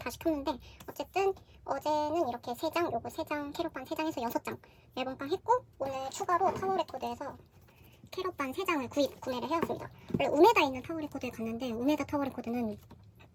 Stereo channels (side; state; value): both; identical; correlation 1.00